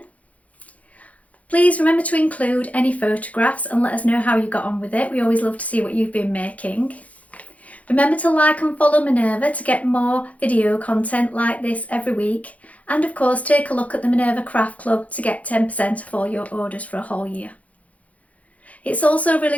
Please remember to include any photographs and let us know how you got on with it. We always love to see what you've been making. Remember to like and follow Minerva to get more video content like this every week. And of course, take a look at the Minerva Craft Club to get 10% off all your orders for a whole year. It's also really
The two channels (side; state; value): right; late; 0.068 ms